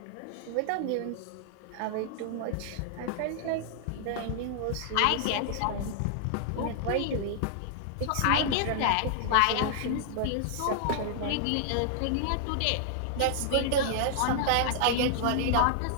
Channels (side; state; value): both; different; correlation -0.01